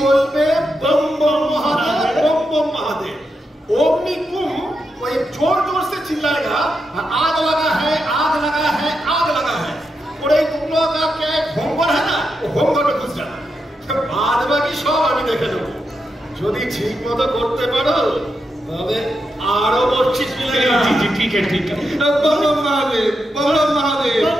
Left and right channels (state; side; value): normal; both; correlation 0.85